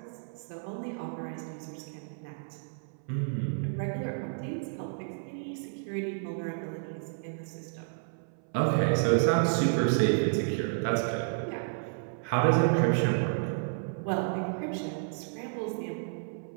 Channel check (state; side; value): silent; left; 57 dB below the other